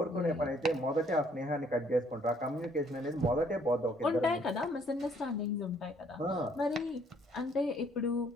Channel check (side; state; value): both; normal; correlation 0.64